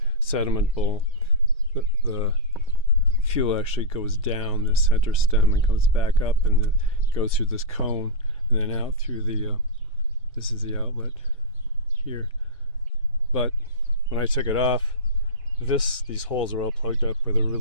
sediment bowl. The fuel actually goes down the center stem and comes back up, and goes through this cone and then out through the this is the outlet here. But when I took it off, these holes are all plugged up with a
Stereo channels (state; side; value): normal; both; correlation -0.10